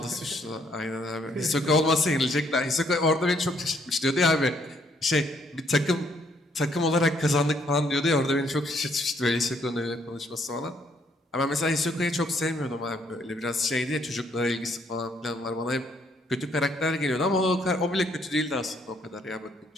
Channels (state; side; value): normal; both; correlation 0.69